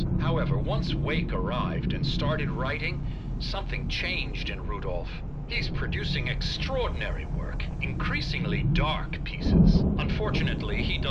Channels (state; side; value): identical; both; correlation 1.00